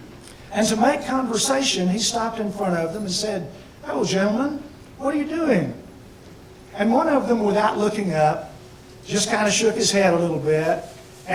And to make conversation, he stopped in front of them and said, "Hello, gentlemen, what are you doing?" And one of them, without looking up, just kind of shook his head a little bit,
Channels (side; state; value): both; identical; correlation 1.00